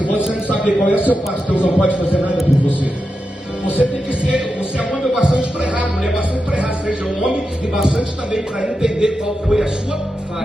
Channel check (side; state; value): both; normal; correlation 0.89